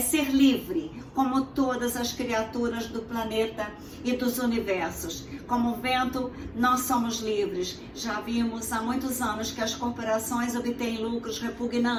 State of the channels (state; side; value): identical; both; correlation 1.00